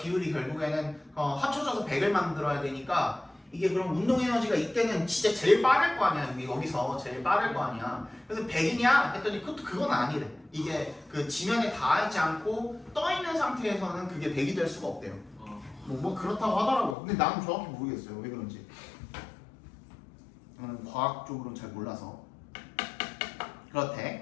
결국에는 합쳐져서 100을 만들어야 되니까 이게 그럼 운동 에너지가 이때는 진짜 제일 빠를 거 아니야. 여기서 제일 빠를 거 아니야. 그래서 100이냐 했더니 그건 아니래. 이게 그 지면에 닿지 않고 떠 있는 상태에서는 그게 100이 될 수가 없대요. 뭐 그렇다고 하더라고요. 근데 나는 정확히 모르겠어요. 왜 그런지. 저는 과학적으로는 잘 몰라서.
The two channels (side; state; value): right; drops out; at 16.9 s